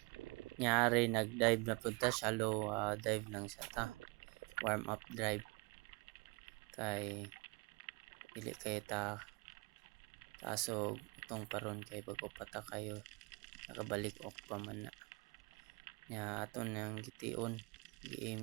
Nyari nag-dive na punta, shallow dive lang siya ta. Warm up dive. Kay dili kay ta tasog itong paron kay bago pata kayo nakabalik ok pa man na. Nya aton nang gitiun,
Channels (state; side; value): quieter; left; 29.0 dB